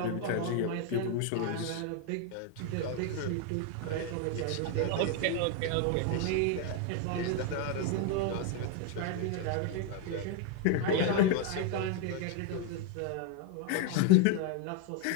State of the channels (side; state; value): both; different; correlation 0.01